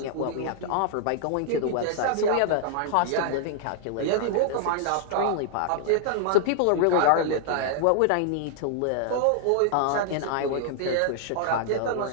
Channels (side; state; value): both; different; correlation -0.01